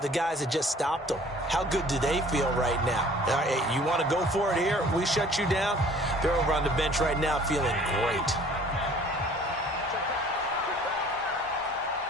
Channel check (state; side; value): normal; both; correlation 0.52